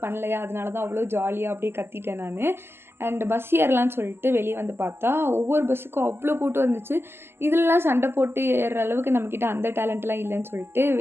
பண்ணலையா, அதனால தான் அவ்வளோ ஜாலியாக அப்படியே கத்திட்டேன் நான். அண்ட் பஸ் ஏறலான்னு சொல்லிட்டு வெளியே வந்து பார்த்தா ஒவ்வொரு பஸ்ஸுக்கும் அவ்வளோ கூட்டம் இருந்துச்சு. இதெல்லாம் சண்டை போட்டு ஏறுற அளவுக்கு நம்மக்கிட்ட அந்த டேலண்ட்லாம் இல்லைன்னு சொல்லிட்டு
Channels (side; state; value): left; late; 0.12 ms